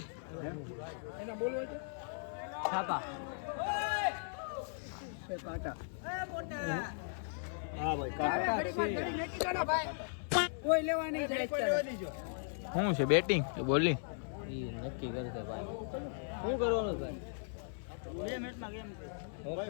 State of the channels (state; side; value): silent; right; 53 dB below the other